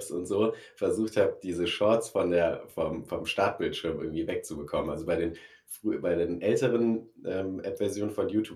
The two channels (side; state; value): both; identical; correlation 1.00